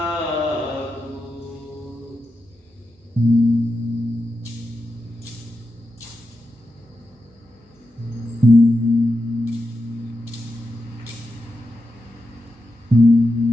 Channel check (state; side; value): normal; both; correlation 0.88